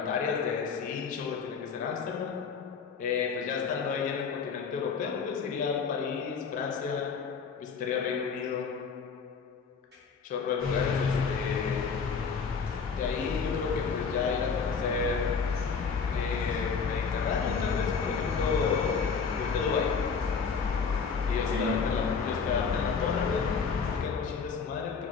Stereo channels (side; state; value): right; quieter; 5.6 dB